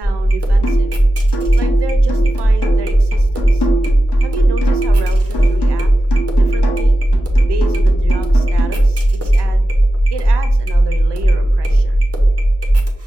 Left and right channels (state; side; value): normal; both; correlation 0.93